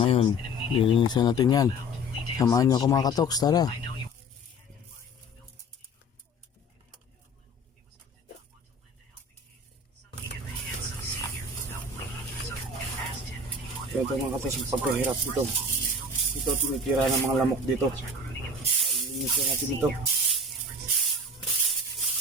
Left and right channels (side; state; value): both; normal; correlation 0.41